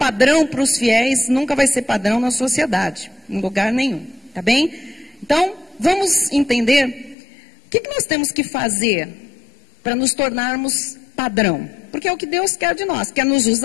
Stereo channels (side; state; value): right; drops out; at 7.2 s